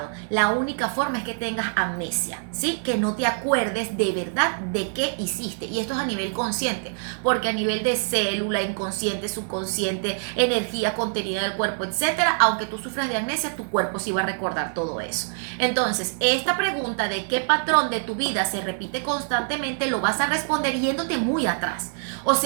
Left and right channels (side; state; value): left; silent; digital silence